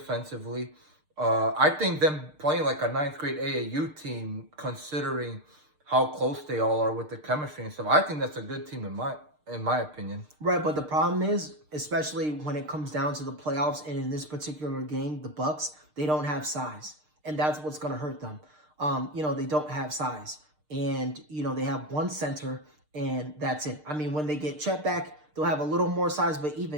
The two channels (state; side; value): late; left; 6.6 ms